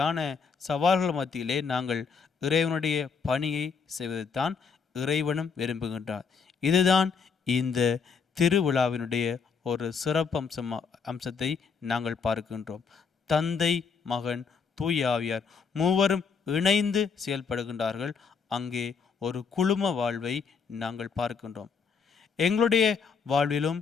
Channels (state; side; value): quieter; right; 5.8 dB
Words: சவால்கள் மத்தியிலே நாங்கள் இறைவனுடைய பணியை செய்வதைத்தான் இறைவனும் விரும்புகின்றார். இதுதான் இந்த திருவிழாவினுடைய ஒரு சிறப்பு அம்சத்தை நாங்கள் பார்க்கின்றோம். தந்தை, மகன், தூய ஆவியார் மூவரும் இணைந்து செயல்படுகின்றார்கள். அங்கே ஒரு குழும வாழ்வை நாங்கள் பார்க்கின்றோம். எங்களுடைய வாழ்விலும்